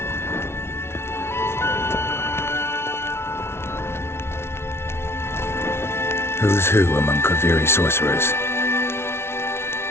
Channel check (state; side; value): late; right; 0.12 ms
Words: Who's who among Kaviri sorcerers?